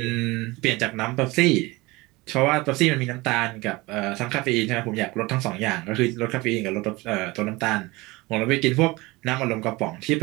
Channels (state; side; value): quieter; left; 22.4 dB